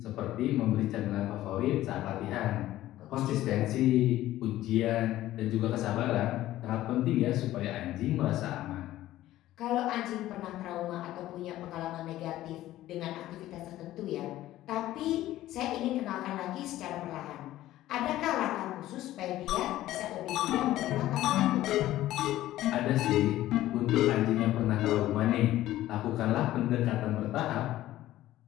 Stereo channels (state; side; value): quieter; right; 14.7 dB